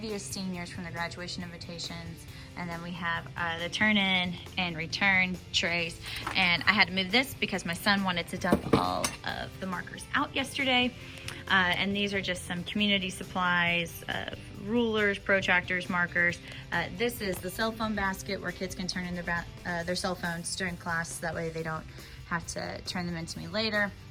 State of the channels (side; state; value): both; identical; correlation 1.00